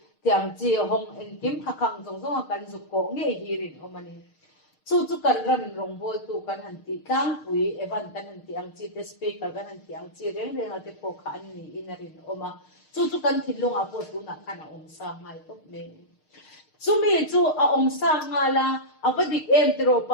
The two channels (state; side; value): late; right; 6.5 ms